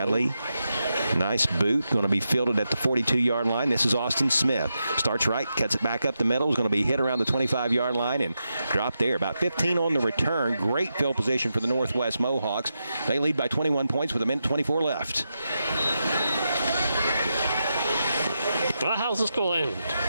nice boot, going to be fielded at the 42-yard line. This is Austin Smith. Starts right, cuts it back up the middle. Is going to be hit around the 25-yard line and dropped there. About 15 on the return. Great field position for the Northwest Mohawks. They lead by 21 points with 1:24 left. Well, how's this going to end,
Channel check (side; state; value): both; inverted; correlation -0.87